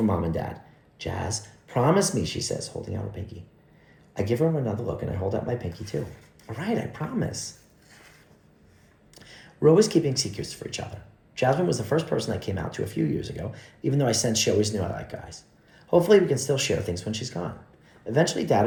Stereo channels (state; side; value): identical; both; correlation 1.00